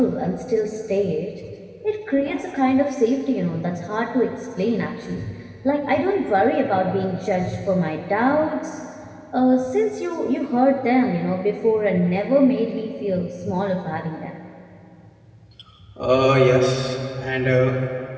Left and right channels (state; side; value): identical; both; correlation 1.00